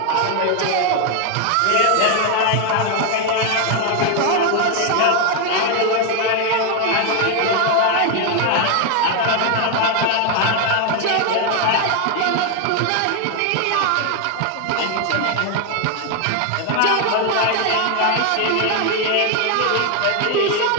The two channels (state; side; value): different; both; correlation 0.01